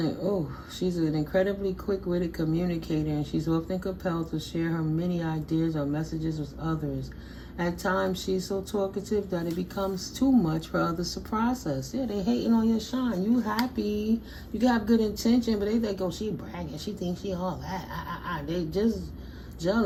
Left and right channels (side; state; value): both; identical; correlation 1.00